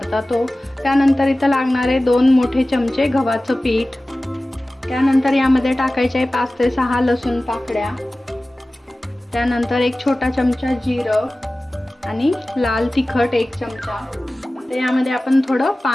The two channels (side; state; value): both; normal; correlation 0.97